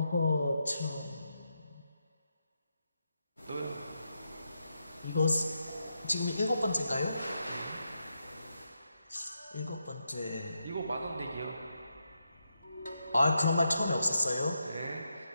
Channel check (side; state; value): both; inverted; correlation -0.84